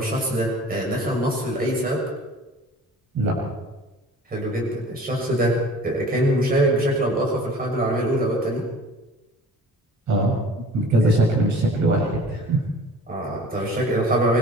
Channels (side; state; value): both; normal; correlation 0.46